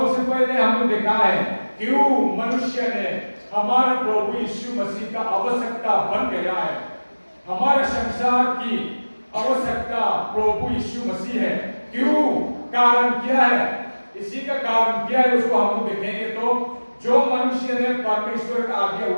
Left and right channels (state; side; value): inverted; both; correlation -1.00